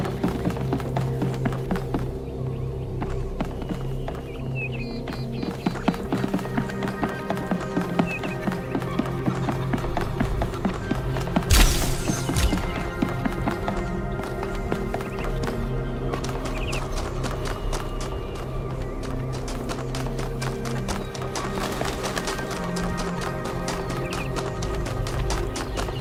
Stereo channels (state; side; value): identical; both; correlation 1.00